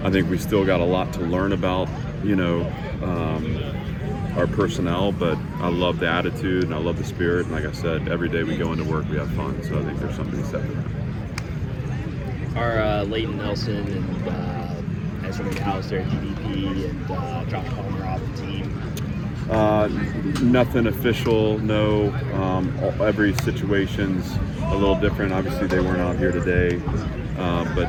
I think we still got a lot to learn about, you know, our personnel, but I love the attitude and I love the spirit. And like I said, every day we go into work, we have fun. So I think there's something to be said for that. Are Leighton Nelson and Ezra McAllister, DDP, and Josh Palmer off the team? Nothing official, no. Every situation's a little different. Obviously, they weren't out here today,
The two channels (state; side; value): identical; both; correlation 1.00